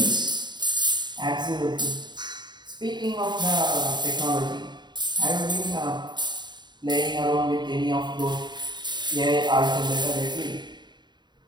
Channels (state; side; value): late; left; 0.21 ms